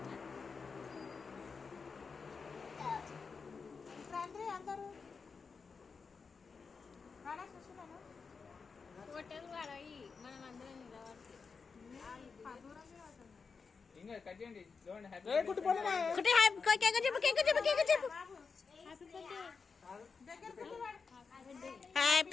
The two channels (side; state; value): right; quieter; 5.1 dB